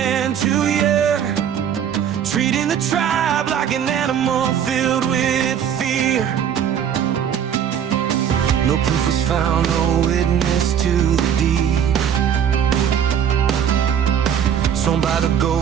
to hear, treating the tribe like an animal filled with fear. No proof was found, no witness to the deed, sworn by the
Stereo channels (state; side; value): quieter; left; 8.8 dB